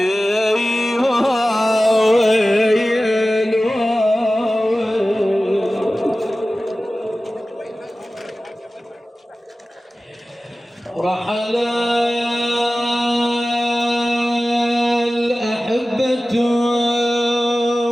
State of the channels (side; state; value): both; normal; correlation 0.96